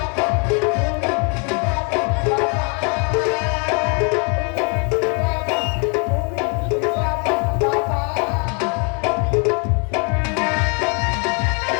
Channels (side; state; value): right; quieter; 36.2 dB